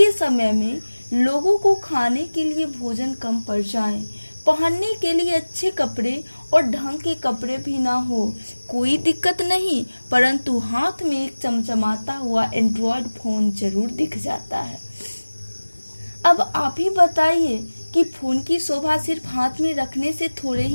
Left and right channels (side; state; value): both; inverted; correlation -1.00